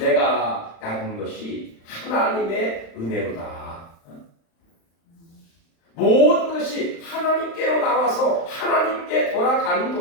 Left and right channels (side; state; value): right; late; 35 ms